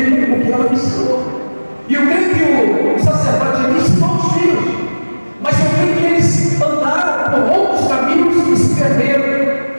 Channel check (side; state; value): both; inverted; correlation -1.00